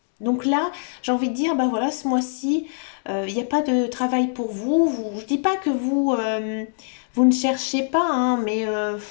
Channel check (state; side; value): silent; right; digital silence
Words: Donc là, j'ai envie de dire, ben voilà, ce mois-ci, il n'y a pas de travail pour vous. Je ne dis pas que vous ne cherchez pas, hein, mais